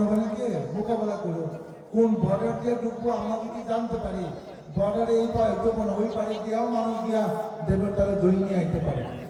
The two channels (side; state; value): both; identical; correlation 1.00